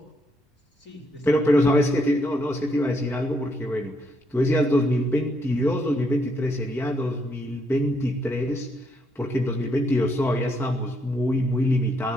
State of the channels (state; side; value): normal; both; correlation 0.75